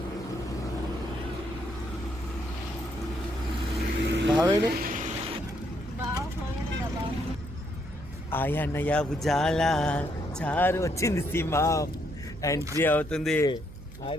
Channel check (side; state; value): right; noise; hum, 16 dB below the sound